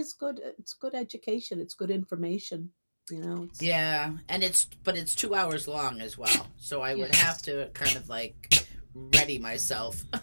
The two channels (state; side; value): inverted; both; correlation -1.00